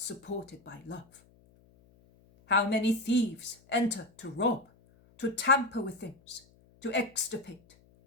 by love. How many thieves enter to rob, to tamper with things, to extirpate,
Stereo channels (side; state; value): left; noise; hum, 29 dB below the sound